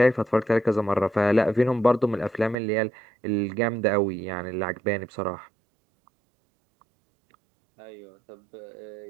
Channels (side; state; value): left; drops out; at 2.6 s